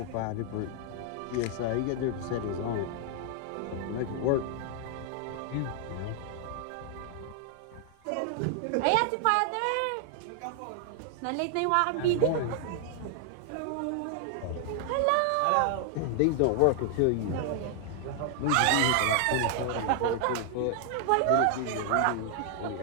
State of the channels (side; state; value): both; different; correlation 0.00